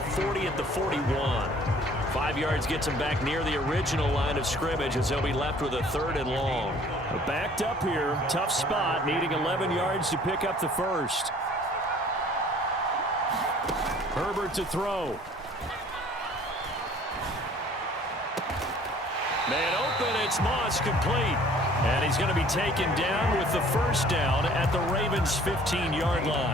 40 at the 41. 5 yards gets him back near the original line of scrimmage as they'll be left with a 3rd and long. Backed up here. Tough spot. Needing 11 yards to pick up the first. Herbert to throw. Man open, it's Moss, complete. And he's going to be taken down with the first down at the Ravens' 15-yard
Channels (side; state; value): both; normal; correlation 0.53